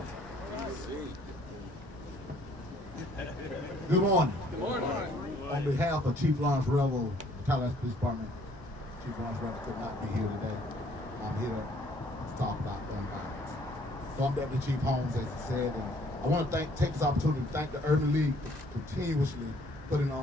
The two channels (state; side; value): normal; both; correlation 0.61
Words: Good morning. Good morning. On behalf of Chief Lawrence Revel, Tallahassee Police Department, Chief Lawrence Revel could not be here today. I'm here to talk about gun violence. So I'm Deputy Chief Holmes, as he said, and I want to take this opportunity to thank the Urban League for continuously putting